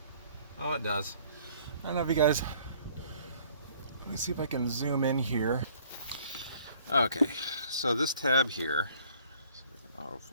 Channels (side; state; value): both; inverted; correlation -0.58